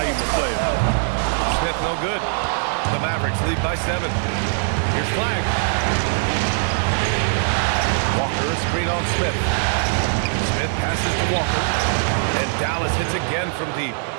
player. Smith no good. The Mavericks lead by 7. Here's Flag. Walker, screen on Smith. Smith passes to Walker. And Dallas hits again from deep.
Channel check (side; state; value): left; silent; digital silence